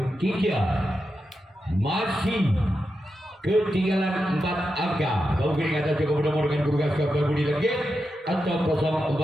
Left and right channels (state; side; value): normal; both; correlation 0.88